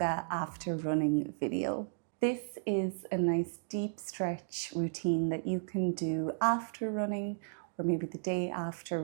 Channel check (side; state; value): left; silent; digital silence